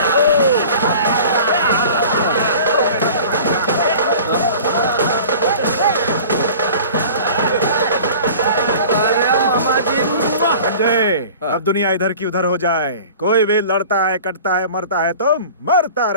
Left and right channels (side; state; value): both; inverted; correlation -0.42